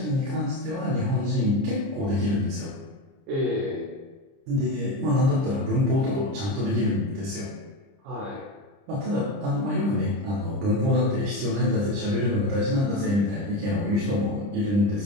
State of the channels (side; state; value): left; late; 30 ms